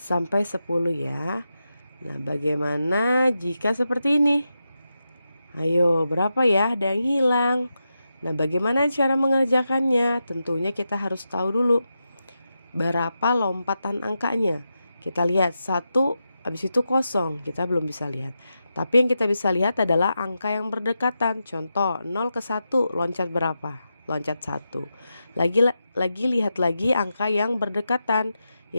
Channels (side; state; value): both; inverted; correlation -0.89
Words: 10 ya. Nah, bagaimana jika seperti ini? Ayo, berapa ya? Ada yang hilang. Nah, bagaimana cara mengerjakannya? Tentunya kita harus tahu dulu berapa lompatan angkanya. Kita lihat 1, habis itu kosong, kita belum bisa lihat. Tapi yang kita bisa lihat adalah angka yang berdekatan. Contoh 0 ke 1 loncat berapa? Loncat 1. Lagi lihat lagi angka yang berdekatan,